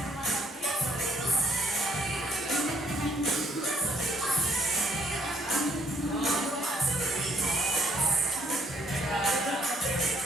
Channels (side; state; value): both; normal; correlation 0.67